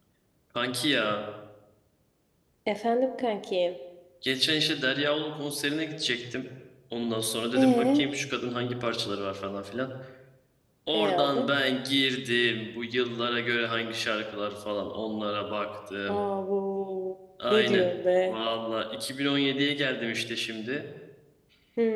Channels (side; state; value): both; identical; correlation 1.00